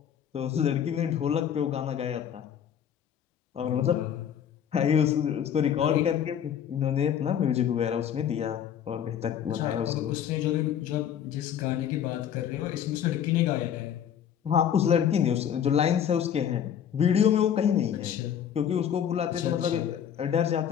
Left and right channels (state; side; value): quieter; right; 9.1 dB